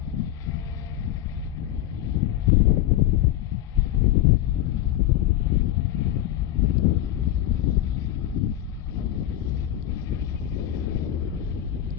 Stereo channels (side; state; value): right; quieter; 12.8 dB